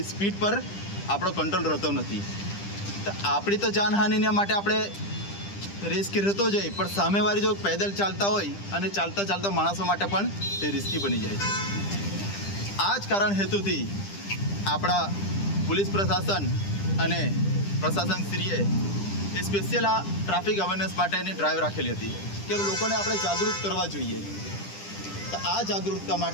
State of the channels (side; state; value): right; late; 10 ms